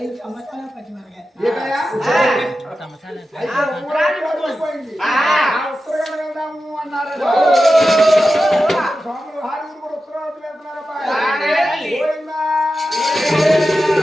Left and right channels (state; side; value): normal; both; correlation 0.92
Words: సంవత్సరాలు పచ్చి మరగా ఏటయ్యా? ఉండిపోయింది ఉత్తరకాండ వెళ్దాము అన్నారు స్వాములు హారీలు కూడా ఉత్తరావతి వెళ్తున్నారప్ప పోయిందా